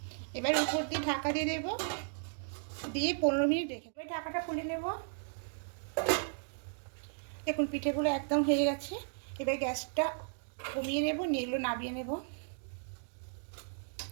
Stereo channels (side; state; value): left; silent; digital silence